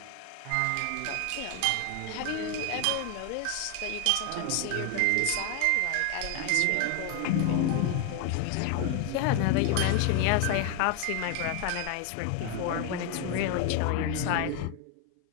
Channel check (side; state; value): both; different; correlation 0.01